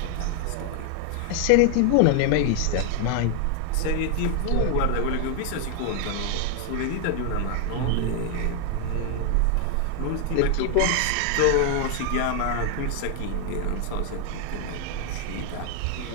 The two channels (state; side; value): different; both; correlation 0.00